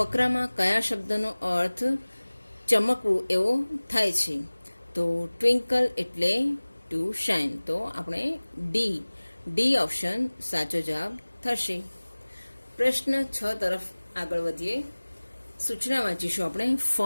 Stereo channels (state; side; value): inverted; both; correlation -1.00